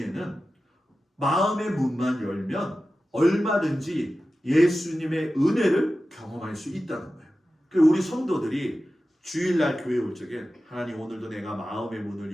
마음의 문만 열면 얼마든지 예수님의 은혜를 경험할 수 있다는 거예요. 그래서 우리 성도들이 주일날 교회 올 적에 하나님 오늘도 내가 마음의 문을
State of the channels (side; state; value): both; normal; correlation 0.94